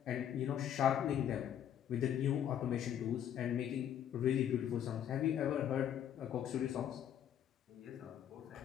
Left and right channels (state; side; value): quieter; right; 9.9 dB